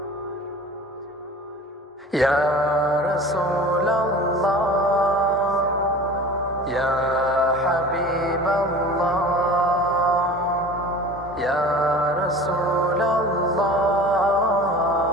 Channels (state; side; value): normal; both; correlation 0.39